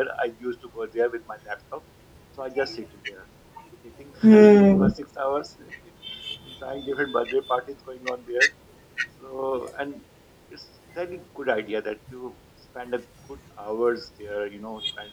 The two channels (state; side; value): identical; both; correlation 1.00